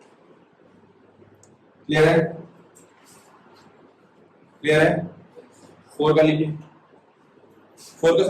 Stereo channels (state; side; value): identical; both; correlation 1.00